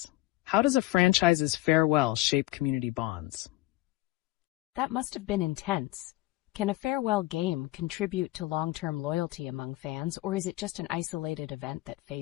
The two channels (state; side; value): quieter; right; 18.2 dB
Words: How does a franchise's farewell shape community bonds? That must have been intense. Can a farewell game contribute to long-term loyalty among fans, or is it just an isolated event that